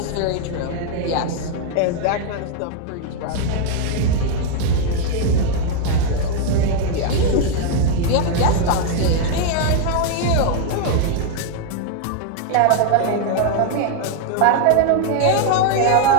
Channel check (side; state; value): both; different; correlation 0.00